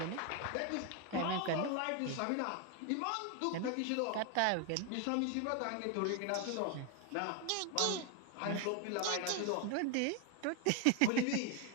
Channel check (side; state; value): both; different; correlation 0.01